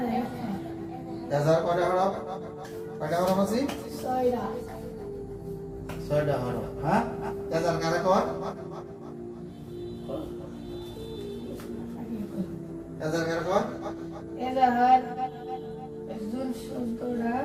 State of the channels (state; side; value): identical; both; correlation 1.00